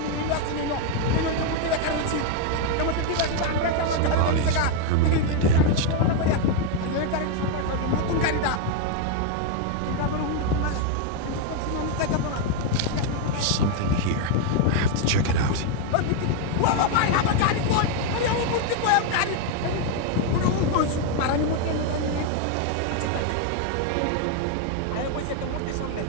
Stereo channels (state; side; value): different; both; correlation 0.01